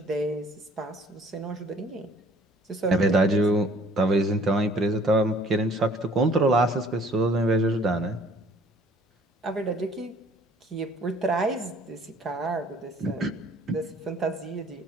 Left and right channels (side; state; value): both; normal; correlation 0.55